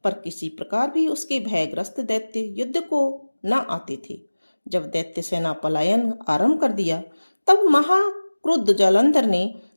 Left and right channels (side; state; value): both; inverted; correlation -1.00